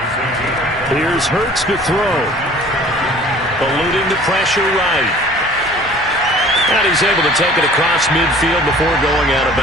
Here's Hurts to throw. Eluding the pressure right. And he's able to take it across midfield before going out of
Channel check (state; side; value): normal; both; correlation 0.49